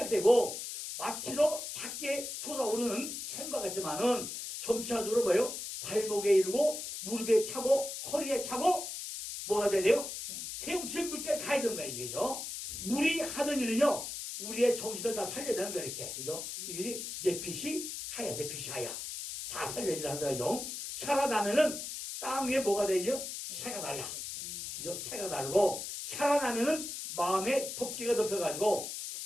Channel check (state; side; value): noise; left; hiss, 6 dB below the sound